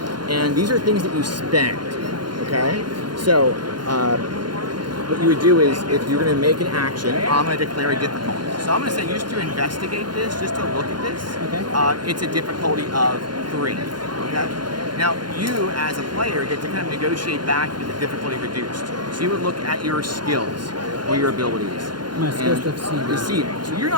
And these are things that you spend. Okay. So what you would do is, if you're going to make an action, I'm going to declare a difficulty. So I'm going to say, just to investigate this, just to look at this, okay. It's a difficulty of 3. Okay. Now, you as a player get to kind of negotiate back with the difficulty reduced. So you would look at your skills or your abilities. My skills to deceiving. So you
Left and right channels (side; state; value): left; late; 0.71 ms